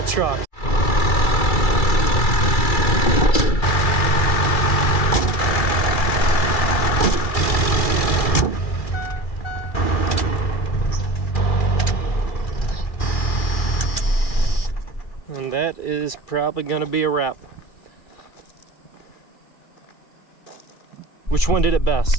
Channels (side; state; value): right; late; 2.3 ms